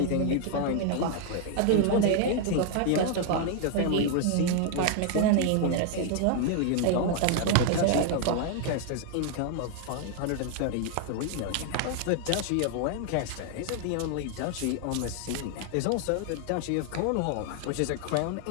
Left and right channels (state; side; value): different; both; correlation 0.00